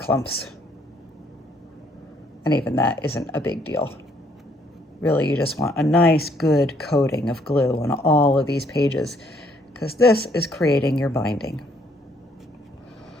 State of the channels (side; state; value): both; normal; correlation 0.67